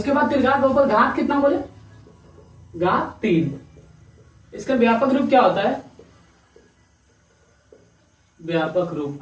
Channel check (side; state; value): both; identical; correlation 1.00